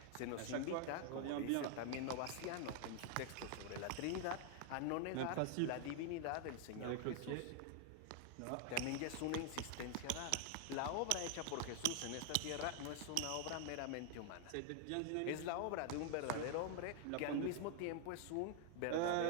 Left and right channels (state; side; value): different; both; correlation 0.00